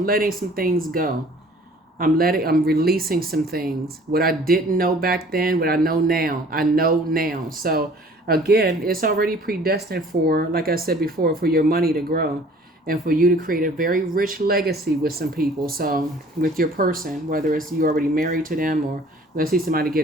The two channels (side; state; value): both; normal; correlation 0.52